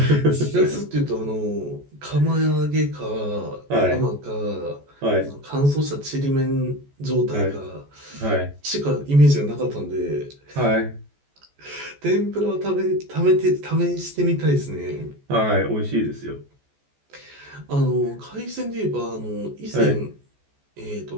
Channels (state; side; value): late; left; 14 ms